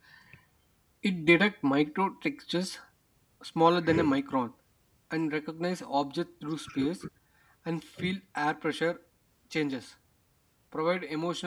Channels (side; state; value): both; identical; correlation 1.00